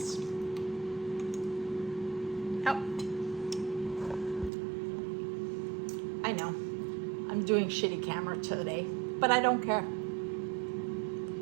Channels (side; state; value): left; drops out; at 4.5 s